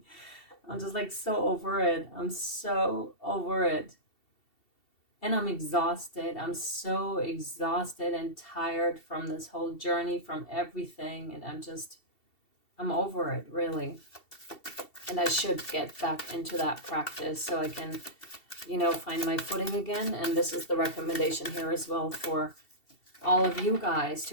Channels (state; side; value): late; right; 2.7 ms